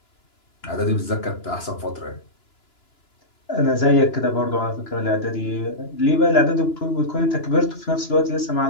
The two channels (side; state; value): right; late; 2.9 ms